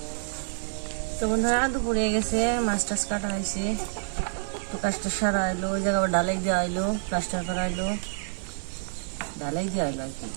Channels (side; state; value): left; silent; digital silence